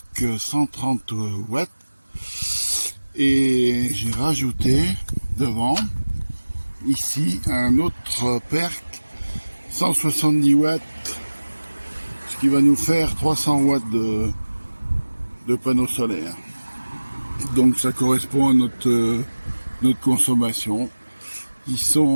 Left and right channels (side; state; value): both; inverted; correlation -1.00